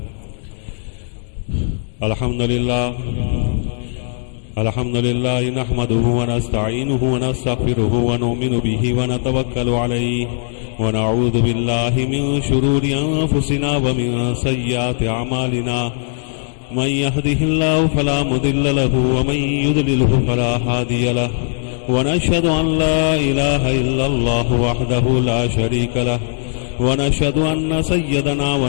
الحمد لله الحمد لله نحمده ونستعينه ونستغفره ونؤمن به ونتوكل عليه ونعوذ بالله من شرور أنفسنا ومن سيئات أعمالنا. من يهده الله فلا مضل له ومن يضلله فلا هادي له. ونشهد أن لا إله إلا الله وحده لا شريك له ونشهد أن سيدنا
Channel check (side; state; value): right; silent; digital silence